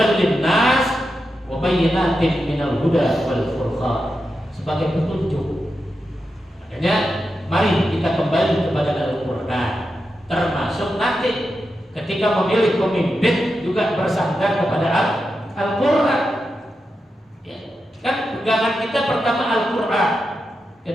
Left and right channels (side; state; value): both; normal; correlation 0.88